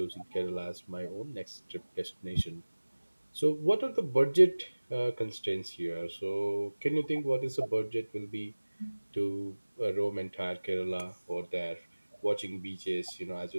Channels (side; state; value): both; inverted; correlation -1.00